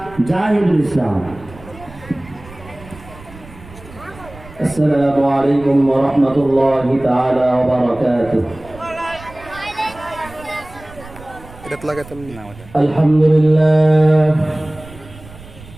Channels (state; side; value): noise; right; rumble, 19 dB below the sound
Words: জাহিদুল ইসলাম। السلام عليكم ورحمة الله تعالى وبركاته.